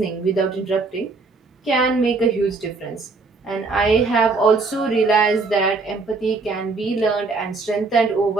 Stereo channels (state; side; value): quieter; left; 3.9 dB